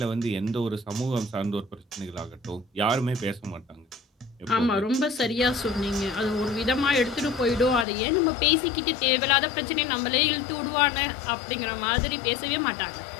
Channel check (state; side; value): drops out; right; at 7.9 s